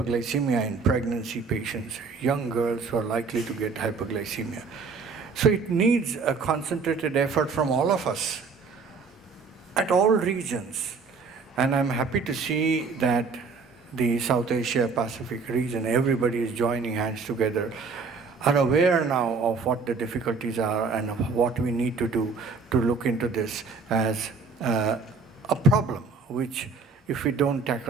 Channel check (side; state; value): left; quieter; 4.7 dB